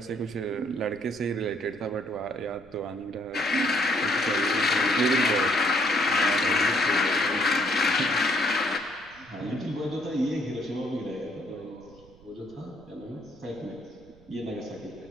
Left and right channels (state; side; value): noise; right; rumble, 25 dB below the sound